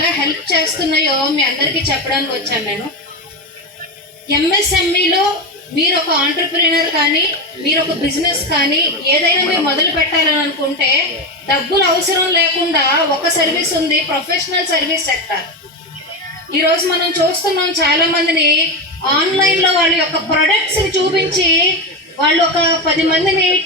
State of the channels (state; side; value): normal; both; correlation 0.16